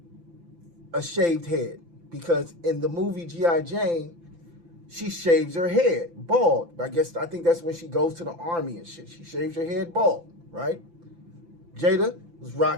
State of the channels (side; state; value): left; late; 5.9 ms